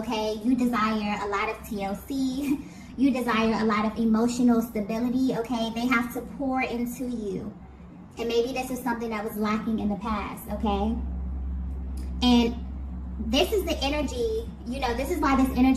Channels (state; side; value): identical; both; correlation 1.00